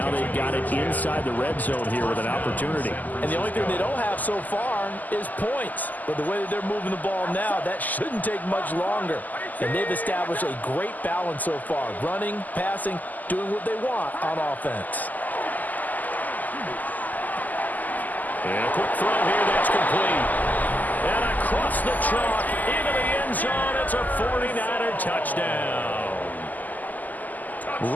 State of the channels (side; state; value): right; late; 0.082 ms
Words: they've got it inside the red zone here with an opportunity. And the only thing they don't have so far is points. But the way that they're moving the ball now, that shouldn't take much longer. And they've established a great balance so far. Running, passing, doing what they want on offense. And a quick throw here, that's complete. And across the chalk, into the end zone, it's a 49er touchdown.